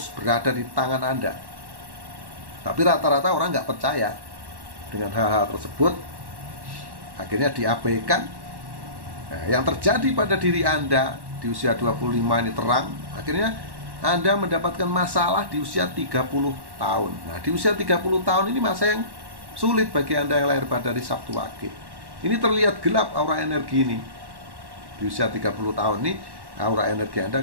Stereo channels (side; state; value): left; late; 1.1 ms